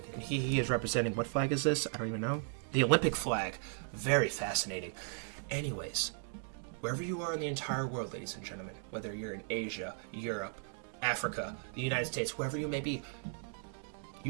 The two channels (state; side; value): silent; left; 54 dB below the other